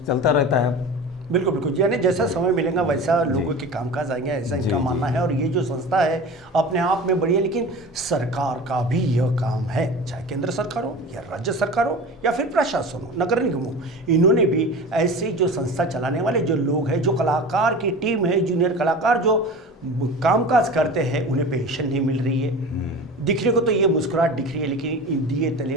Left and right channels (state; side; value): normal; both; correlation 0.34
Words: चलता रहता है। बिल्कुल बिल्कुल, यानी जैसा समय मिलेगा वैसा लोगों के कामकाज आएंगे, ऐसा इनका मानना है। और ये जो संस्था है अपने आप में बड़ी है, लेकिन सरकार का भी यह काम है, चाहे केंद्र सरकार हो या राज्य सरकार हो या फिर प्रशासन हो, नगर निगम हो, इन्होंने भी ऐसी जो संस्था चलाने वाले जो लोग हैं, जो कलाकार की टीम है, जूनियर कलाकार जो कामकाज करते हैं, उन्हें पेंशन नहीं मिल रही है। दिखने को तो ये मुस्कुराहट दिख रही है, लेकिन दिए तले